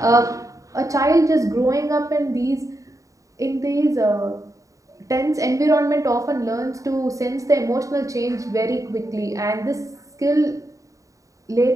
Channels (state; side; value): late; left; 0.16 ms